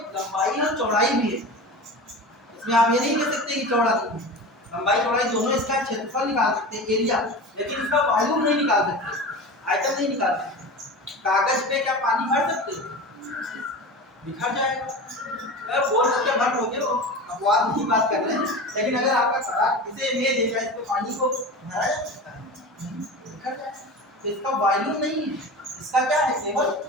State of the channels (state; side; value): normal; both; correlation 0.31